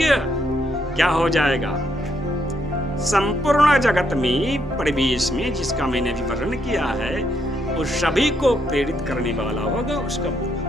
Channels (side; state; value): both; normal; correlation 0.75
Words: क्या हो जाएगा? संपूर्ण जगत में, परिवेश में, जिसका मैंने अभी वर्णन किया है, उस सभी को प्रेरित करने वाला होगा, उसका